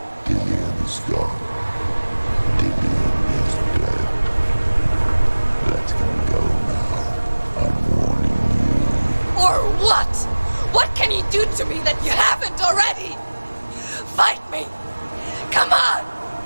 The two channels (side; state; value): both; inverted; correlation -1.00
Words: Dillian is gone. Dillian is dead. Let him go now. I'm warning you. Or what? What can he do to me that you haven't already? Fight me. Come on.